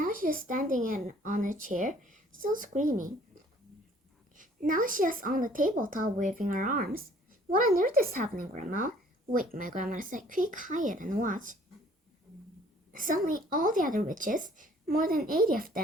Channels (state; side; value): normal; both; correlation 0.57